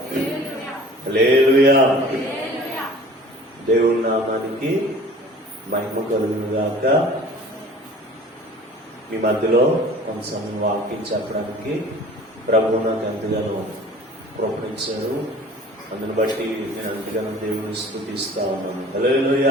హల్లెలూయా. దేవుని నామానికి మహిమ కలుగును గాక. మీ మధ్యలో కొంత సమయం వాక్యం చెప్పడానికి ప్రభువు నాకు ఎంతగానో ప్రోత్సహించారు. అందుని బట్టి నేను ఎంతగానో దేవుని స్తుతిస్తా ఉన్నాను.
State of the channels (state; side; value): normal; both; correlation 0.46